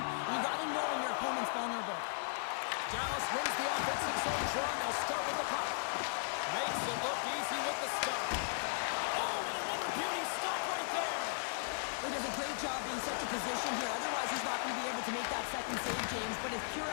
You got to know when your opponent's vulnerable. Dallas wins the offensive zone draw. They'll start with the puck. Makes it look easy with the stop. Oh, and another beauty stop right there. He does a great job being set to position here. Otherwise, he's not going to be able to make that second save, James. But it's pure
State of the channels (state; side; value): silent; right; digital silence